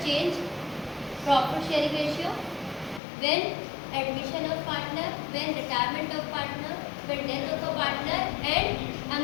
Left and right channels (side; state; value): right; drops out; at 3.0 s